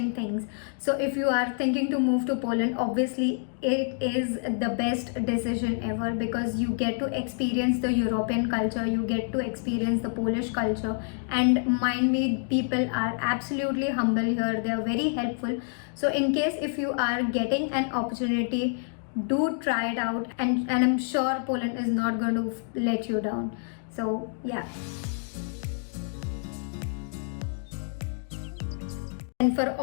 things. So if you are thinking to move to Poland, obviously it is the best decision ever, because you get to experience the European culture, you get to experience the Polish culture, and mind me, people are absolutely humble here. They are very helpful. So in case if you are getting an opportunity, do try it out, and I'm sure Poland is not going to let you down. So yeah. And for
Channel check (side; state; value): right; silent; 60 dB below the other